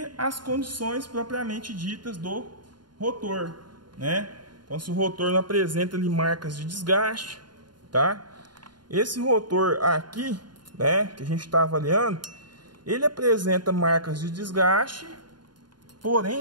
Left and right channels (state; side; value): late; left; 0.71 ms